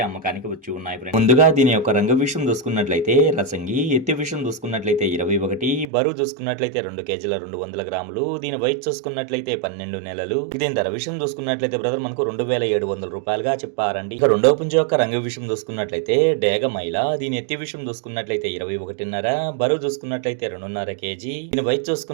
అమ్మకానికి వచ్చి ఉన్నాయి ఫ్రెండ్స్. ముందుగా దీని యొక్క రంగు విషయం చూసుకున్నట్లయితే రసంగి, ఎత్తి విషయం చూసుకున్నట్లయితే 21, బరువు చూసుకున్నట్లయితే 2 కేజీల 200 గ్రాములు, దీని వయసు చూసుకున్నట్లయితే 12 నెలలు. దీని ధర విషయం చూసుకున్నట్లయితే బ్రదర్ మనకు 2700 రూపాయలుగా చెప్పారండి. ఇక రెండవ పుంజు యొక్క రంగు విషయం చూసుకున్నట్లయితే డేగ మైల, దీని ఎత్తి విషయం చూసుకున్నట్లయితే 21.5, బరువు చూసుకున్నట్లయితే 2.5 కేజీ, దీని వయసు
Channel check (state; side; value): drops out; left; at 5.9 s